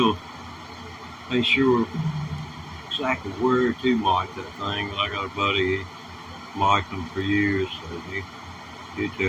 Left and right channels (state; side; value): identical; both; correlation 1.00